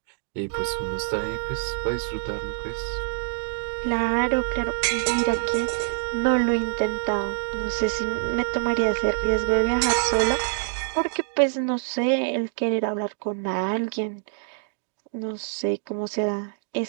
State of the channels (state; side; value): silent; left; digital silence